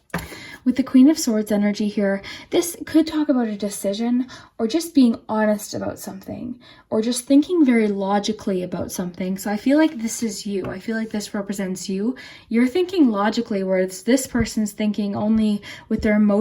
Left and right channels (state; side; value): identical; both; correlation 1.00